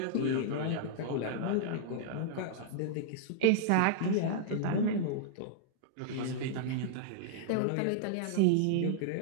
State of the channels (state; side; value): different; both; correlation -0.02